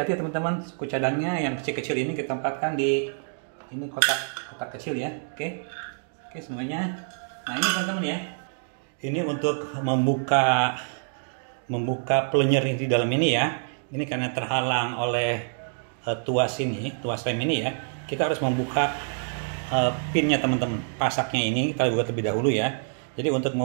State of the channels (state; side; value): silent; left; digital silence